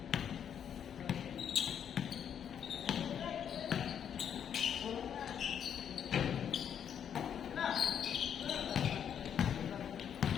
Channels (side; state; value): right; quieter; 8.6 dB